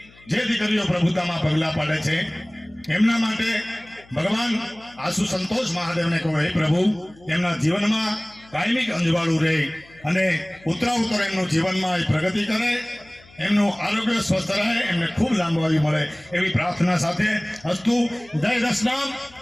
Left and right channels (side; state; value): left; noise; hum, 26 dB below the sound